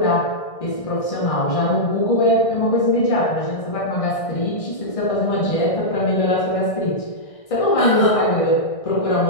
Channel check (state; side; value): late; right; 1.6 ms